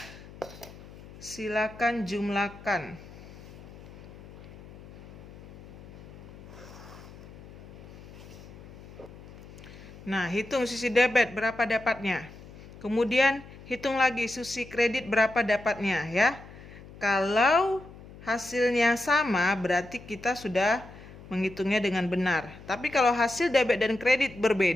silakan jumlahkan. Nah, hitung sisi debit berapa dapatnya. Kemudian hitung lagi sisi kredit berapa dapatnya ya. Kalau hasilnya sama berarti kita sudah menghitungnya dengan benar. Tapi kalau hasil debit dan kredit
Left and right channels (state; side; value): noise; left; hum, 17 dB below the sound